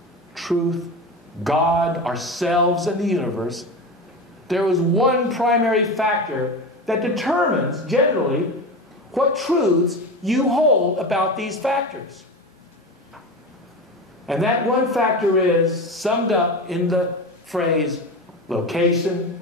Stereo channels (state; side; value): normal; both; correlation 0.25